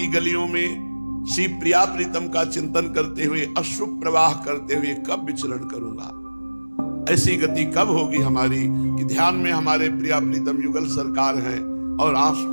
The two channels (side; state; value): both; inverted; correlation -1.00